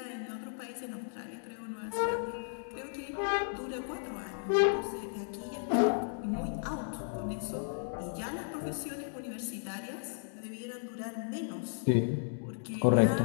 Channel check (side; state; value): right; silent; digital silence